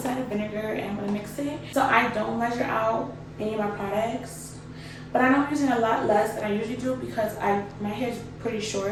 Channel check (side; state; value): both; identical; correlation 1.00